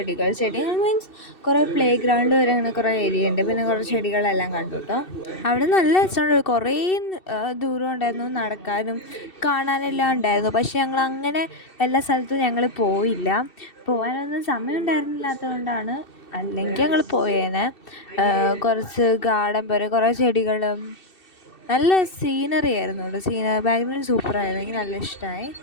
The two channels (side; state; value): right; late; 2.7 ms